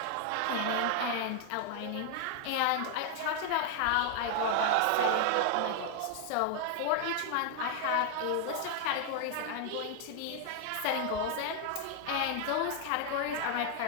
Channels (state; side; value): different; both; correlation 0.00